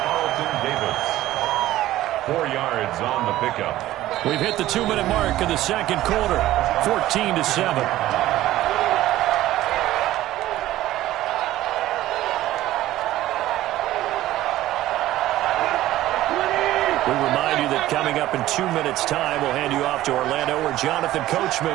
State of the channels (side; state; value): left; quieter; 14.9 dB